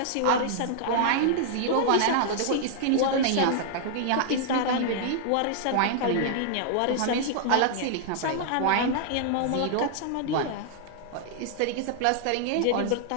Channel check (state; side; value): different; both; correlation -0.01